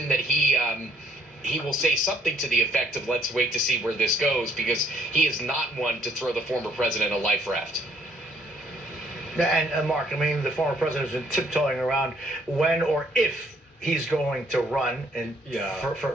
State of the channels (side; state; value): both; normal; correlation 0.62